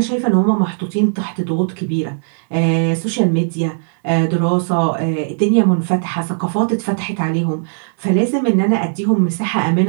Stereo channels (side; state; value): left; silent; digital silence